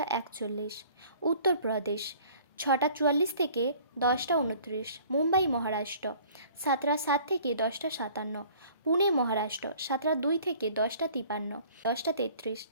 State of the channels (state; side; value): inverted; both; correlation -0.52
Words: 41, উত্তরপ্রদেশ 6টা 44 থেকে 10টা 29, মুম্বাই মহারাষ্ট্র 7টা 7 থেকে 10টা 57, পুনে মহারাষ্ট্র 7টা 2 থেকে 10টা 53, 10টা 33,